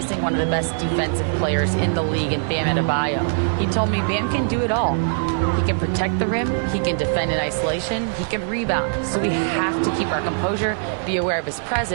one of the best defensive players in the league in Bam Adebayo. He told me Bam can do it all. He can protect the rim, he can defend in isolation, he can rebound. So we have to keep our composure, be aware of his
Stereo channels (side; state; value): left; silent; 64 dB below the other